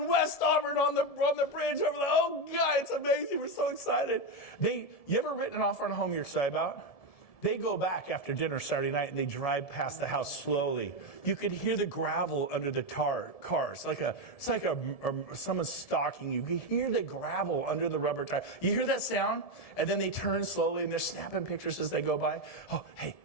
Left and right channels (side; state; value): right; late; 1.7 ms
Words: West Auburn, on the bridge over the. Oh God, it's amazing. We're so excited. You ever written an offer on a home you're excited about? They go back after dinner Saturday night and they drive past the house slowly. You could hear the gravel under the cars. It's like someone's stalking you. You hear the gravel under the rubber tire. You hear that sound? And then they turn slowly and they're snapping pictures as they go by. Oh, hey,